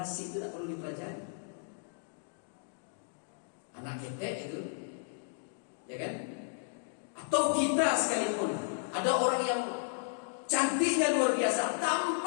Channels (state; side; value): silent; right; digital silence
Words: itu tak perlu dipelajari. Anak ketek itu, ya kan? Atau kita sekalipun ada orang yang cantiknya luar biasa,